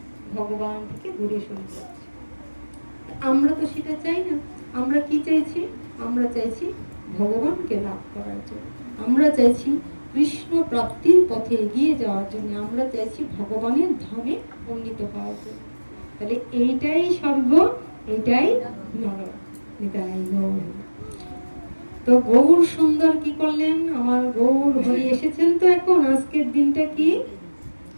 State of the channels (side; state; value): both; inverted; correlation -1.00